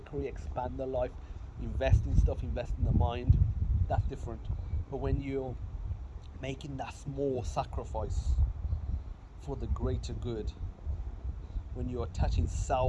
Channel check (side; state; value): both; identical; correlation 1.00